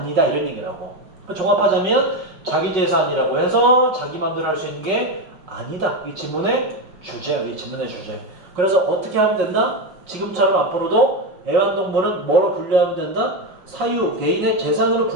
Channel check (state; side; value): late; left; 5.3 ms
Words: 이런 얘기라고. 종합하자면 자기 재산이라고 해서 자기 마음대로 할 수 있는 게 아니다. 이 지문의 주제야, 이 지문의 주제. 그래서 어떻게 하면 된다? 지금처럼 앞으로도 애완동물은 뭐로 분류하면 된다? 사유, 개인의 재산으로